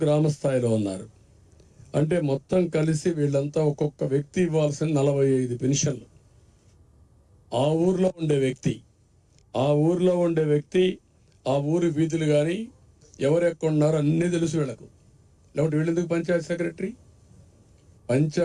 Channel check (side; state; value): both; identical; correlation 1.00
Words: గ్రామ స్థాయిలో ఉన్నారు. అంటే మొత్తం కలిసి వీళ్ళంతా ఒక్కొక్క వ్యక్తి ఇవ్వాల్సిన 45 పెన్షన్లు. ఆ ఊర్లో ఉండే వ్యక్తి ఆ ఊరి వీధులు కానీ ఎవరెక్కడున్నారో అన్నీ తెలుసు వీళ్ళకు. లేకపోతే వీళ్ళెందుకు పంచాయతీ సెక్రటరీ?